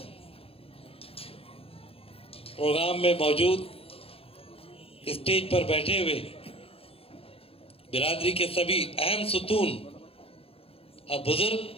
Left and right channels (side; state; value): right; late; 0.28 ms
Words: प्रोग्राम में मौजूद स्टेज पर बैठे हुए बिरादरी के सभी अहम सुतून और बुजुर्ग,